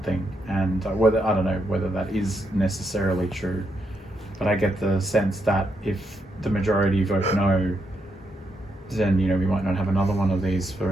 And I don't know whether that is necessarily true, but I get the sense that if the majority vote no, then we might not have another one of these for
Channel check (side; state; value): both; normal; correlation 0.80